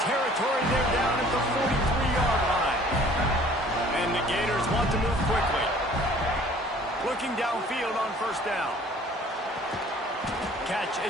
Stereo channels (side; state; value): both; normal; correlation 0.53